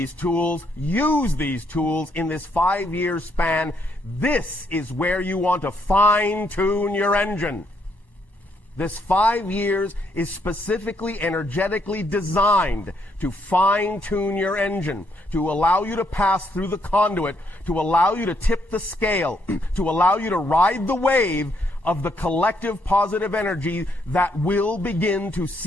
tools, use these tools in this 5-year span. This is where you want to fine-tune your engine. This 5 years is specifically energetically designed to fine-tune your engine, to allow you to pass through the conduit, to allow you to tip the scale, to allow you to ride the wave of the collective positive energy that will begin to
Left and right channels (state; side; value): late; right; 1.1 ms